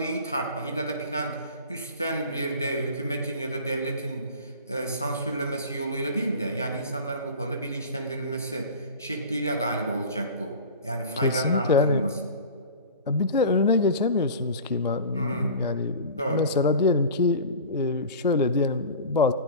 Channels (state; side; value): inverted; both; correlation -0.36